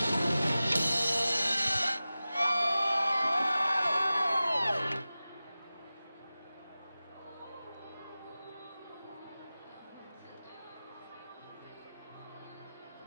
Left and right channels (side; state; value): both; inverted; correlation -0.96